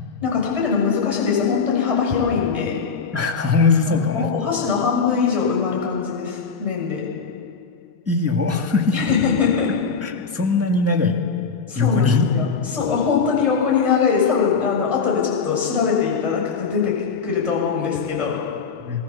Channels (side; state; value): right; quieter; 5.3 dB